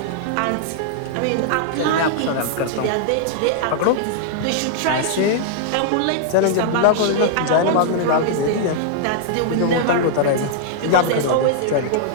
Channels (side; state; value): both; different; correlation -0.01